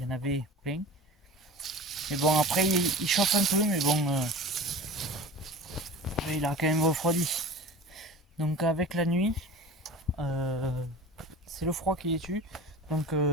y en avait plein. Mais bon, après il chauffe un peu, mais bon, il a quand même refroidi. Donc avec la nuit, c'est le froid qui les tue. Donc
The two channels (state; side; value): normal; both; correlation 0.37